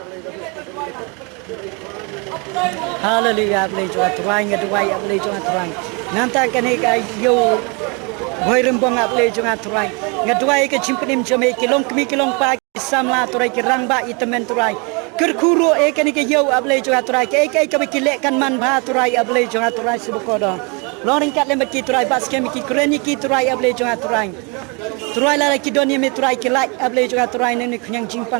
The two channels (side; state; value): left; quieter; 31.8 dB